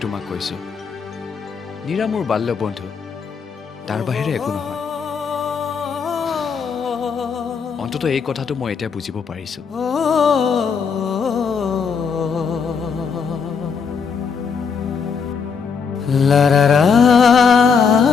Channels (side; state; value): right; quieter; 5.9 dB